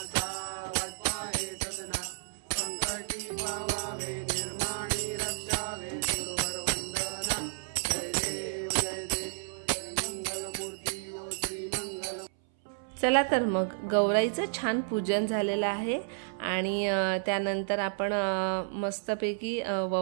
वत्पाहे सदना. संकटी पावावे निर्माणी रक्षावे सुरवर वंदना. जय देव जय देव. मंगल मूर्ती ओ श्री मंगल. चला तर मग गौराईचं छान पूजन झालेलं आहे आणि त्यानंतर आपण मस्तपैकी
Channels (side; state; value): left; silent; 57 dB below the other